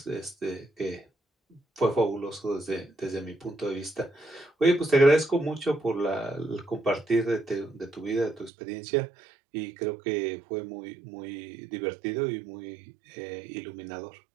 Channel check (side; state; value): left; drops out; at 8.5 s